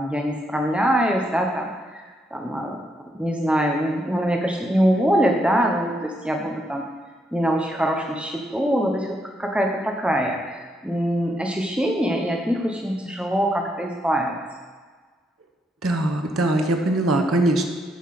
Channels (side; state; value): both; normal; correlation 0.77